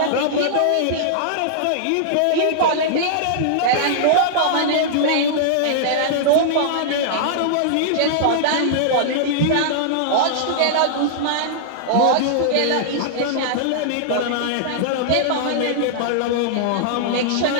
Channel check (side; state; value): both; different; correlation -0.01